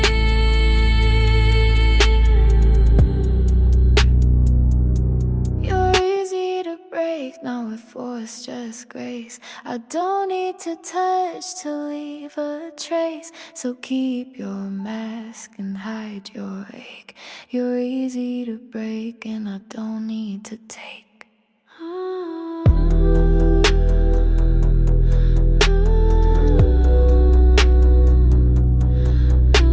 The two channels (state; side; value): identical; both; correlation 1.00